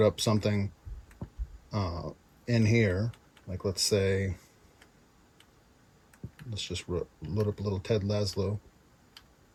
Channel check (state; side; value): identical; both; correlation 1.00